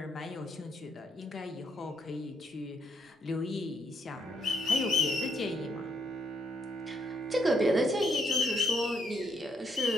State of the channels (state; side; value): normal; both; correlation 0.73